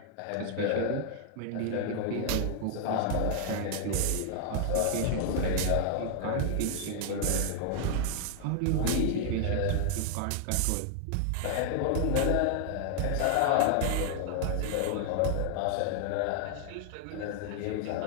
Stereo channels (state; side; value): different; both; correlation 0.00